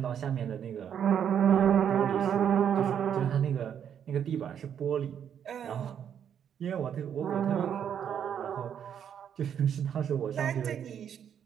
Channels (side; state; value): left; quieter; 8.7 dB